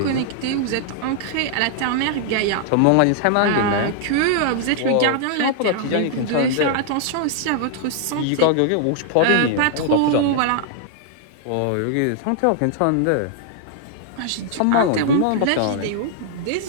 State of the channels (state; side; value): different; both; correlation -0.01